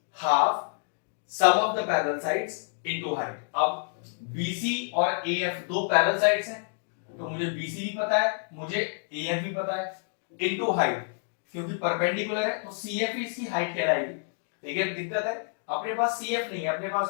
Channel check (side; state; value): right; silent; 58 dB below the other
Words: half sum of the parallel sides into height. अब बीसी और एएफ दो पैरेलल साइड्स हैं, तो मुझे बीसी भी पता है, मुझे एएफ भी पता है, इनटू हाइट क्योंकि परपेंडिकुलर है तो सीएफ इसकी हाइट कहलाएगी। लेकिन दिक्कत है अपने पास सीएफ नहीं है, अपने पास